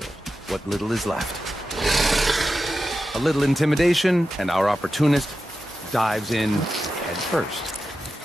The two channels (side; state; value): both; normal; correlation 0.91